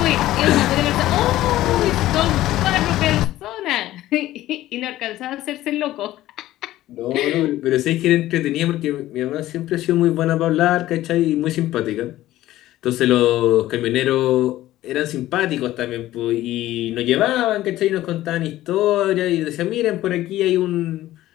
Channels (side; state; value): right; quieter; 15.0 dB